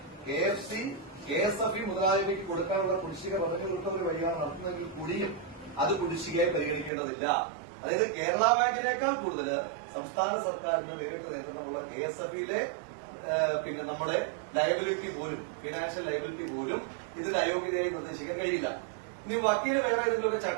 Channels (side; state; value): left; drops out; at 6.9 s